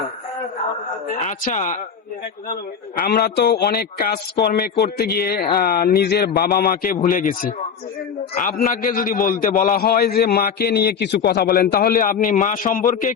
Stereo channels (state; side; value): quieter; right; 6.8 dB